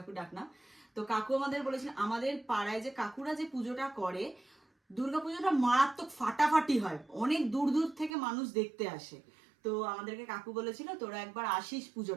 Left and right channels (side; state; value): left; drops out; at 8.1 s